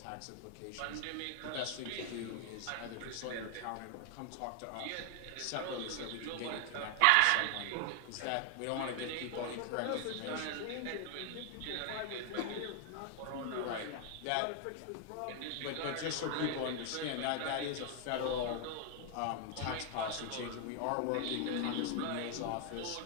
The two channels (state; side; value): different; both; correlation 0.00